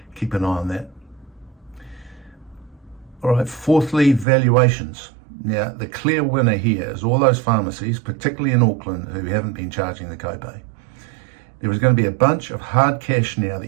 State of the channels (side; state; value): left; drops out; at 4.2 s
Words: Keep an eye on that. All right, fourthly, valuations. Now, the clear winner here is all those pharmacies, particularly in Auckland, who haven't been charging the copay. There is going to be a bunch of hard cash now